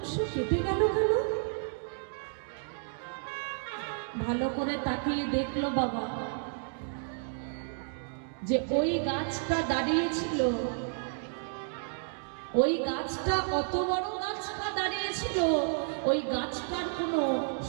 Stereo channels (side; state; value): left; silent; digital silence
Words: কেটে গেল কেন? ভালো করে তাকিয়ে দেখলো বাবা যে ওই গাছটা দাঁড়িয়েছিল, ওই গাছটা অত বড় গাছটা দাঁড়িয়েছিল, ওই গাছটার কোনো